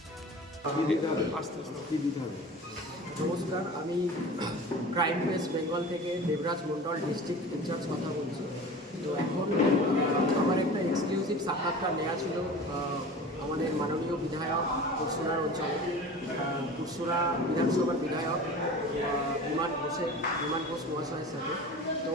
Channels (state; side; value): normal; both; correlation 0.37